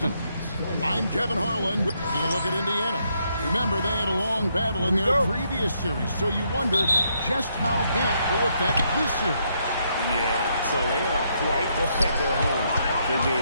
I'm Kevin Harlan. Taking a look at Indiana. Remember, they had a long battle in their previous series, so you wonder just how that will affect this series. Yeah, so they are quite at their home for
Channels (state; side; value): inverted; both; correlation -0.75